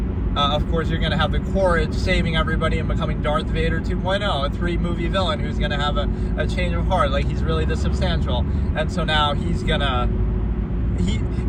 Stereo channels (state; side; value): identical; both; correlation 1.00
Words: of course, you're going to have the Courage saving everybody and becoming Darth Vader 2.0, a 3-movie villain who's going to have a change of heart. Like, he's really this substantial. And so now he's going to,